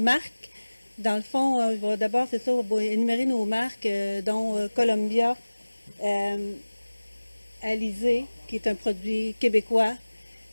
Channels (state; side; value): inverted; both; correlation -1.00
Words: Dans le fond, d'abord, c'est ça, on va énumérer nos marques, dont Columbia, Alizé, qui est un produit québécois.